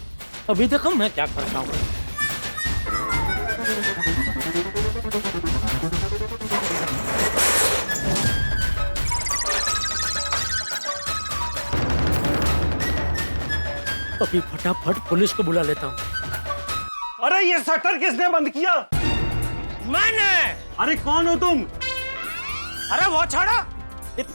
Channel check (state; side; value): inverted; both; correlation -1.00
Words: अभी देखो मैं क्या करता हूँ। अभी फटाफट पुलिस को बुला लेता हूँ। अरे ये शटर किसने बंद किया? मैंने। अरे कौन हो तुम? अरे वो छोड़ो,